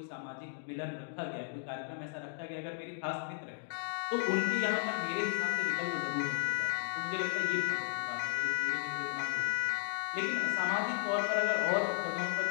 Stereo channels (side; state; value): right; silent; digital silence